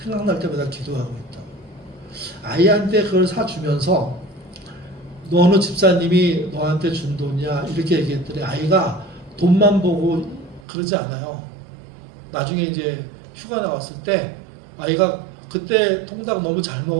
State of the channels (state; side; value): drops out; left; at 10.6 s